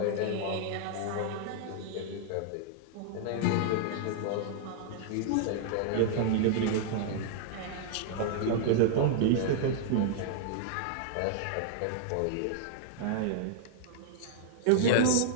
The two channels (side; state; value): both; different; correlation -0.01